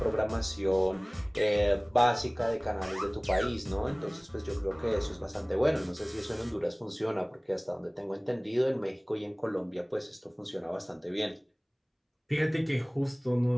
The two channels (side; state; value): both; identical; correlation 1.00